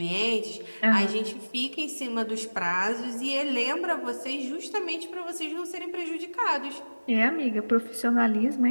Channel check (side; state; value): both; inverted; correlation -1.00